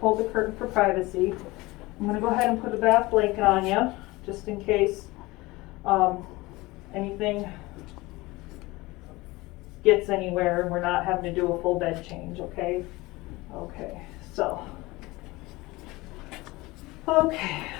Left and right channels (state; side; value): quieter; right; 21.3 dB